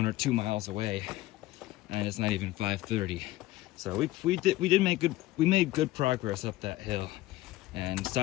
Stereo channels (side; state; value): right; quieter; 16.8 dB